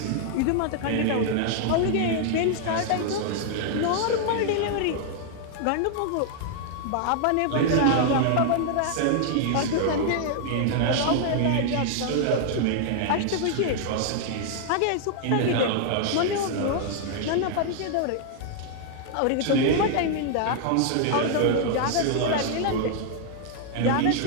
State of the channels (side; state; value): both; different; correlation 0.00